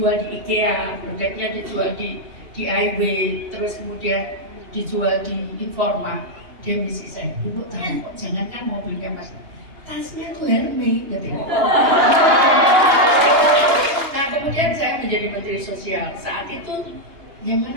di IKEA, produknya dijual di DIY, terus kemudian dijual di Informa. Dia misi saya, ibu tahu kok, jangankan mobilnya mas, tasnya tuh Hermes, gitu. Nah kemudian saya menjadi Menteri Sosial, saat itu ya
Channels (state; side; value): late; left; 2.9 ms